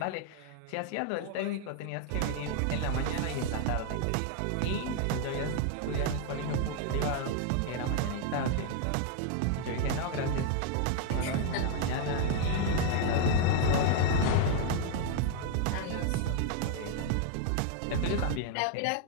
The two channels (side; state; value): both; different; correlation 0.00